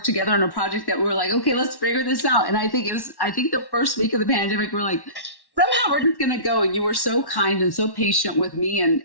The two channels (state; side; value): late; right; 1.1 ms